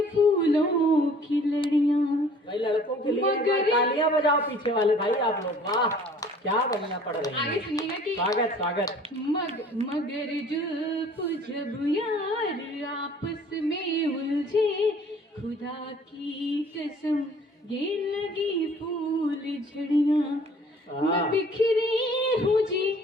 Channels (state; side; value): normal; both; correlation 0.53